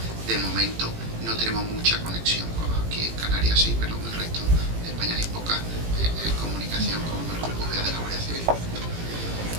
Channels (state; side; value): late; left; 18 ms